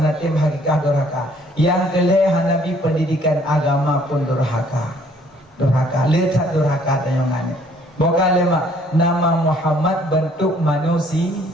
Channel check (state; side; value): normal; both; correlation 0.61